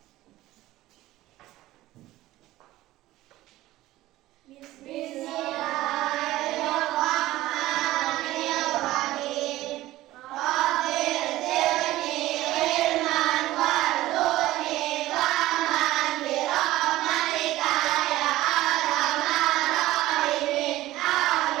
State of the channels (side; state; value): left; quieter; 16.3 dB